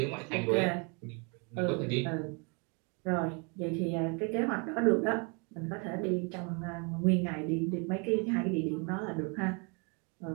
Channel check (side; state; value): left; quieter; 33.5 dB